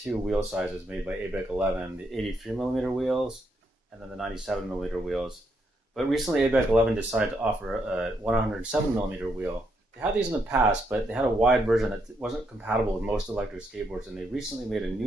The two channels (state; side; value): normal; both; correlation 0.77